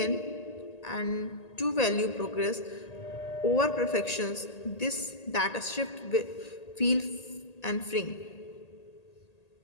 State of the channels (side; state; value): right; late; 1.8 ms